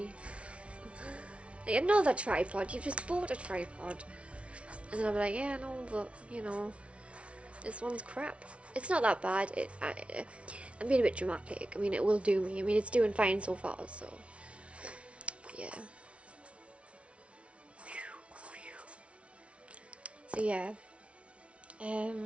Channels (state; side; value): late; left; 0.061 ms